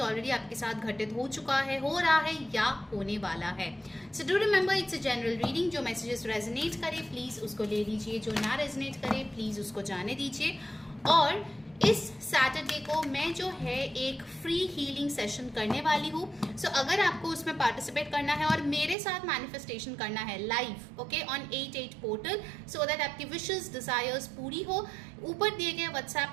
ऑलरेडी आपके साथ घटित हो चुका है, हो रहा है या होने वाला है। So do remember it's a general reading. जो मैसेजेस रेजोनेट करे प्लीज़ उसको ले लीजिए, जो ना रेजोनेट करे प्लीज़ उसको जाने दीजिए। और इस सैटरडे को मैं जो है एक फ्री हीलिंग सेशन करने वाली हूँ। सो अगर आपको उसमें पार्टिसिपेट करना है और मेरे साथ मैनिफेस्टेशन करना है live, okay, on 88 portal, so that आपकी विशेस डिजायर्स पूरी हो, ऊपर दिए गए व्हाट्सएप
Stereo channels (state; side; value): drops out; left; at 18.9 s